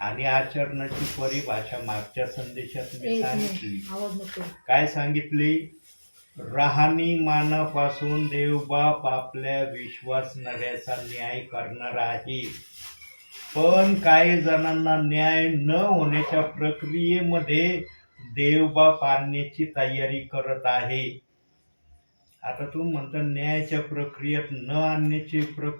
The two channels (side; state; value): both; inverted; correlation -1.00